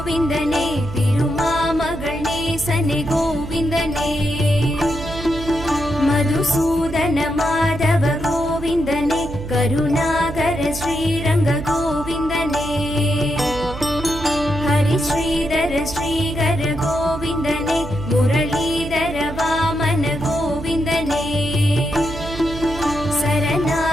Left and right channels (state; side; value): noise; right; hum, 10 dB below the sound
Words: திருமாமகள் நேசனே கோவிந்தனே, மதுசூதன மாதவ கோவிந்தனே, கருணாகர ஸ்ரீரங்க கோவிந்தனே, ஹரி ஸ்ரீதர ஸ்ரீகர கோவிந்தனே, முரளீதர வாமன கோவிந்தனே,